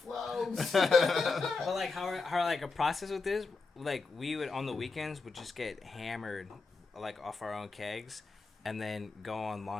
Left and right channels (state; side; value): quieter; right; 4.2 dB